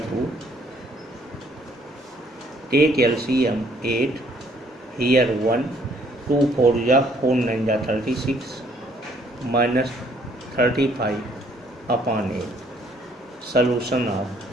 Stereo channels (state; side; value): normal; both; correlation 0.64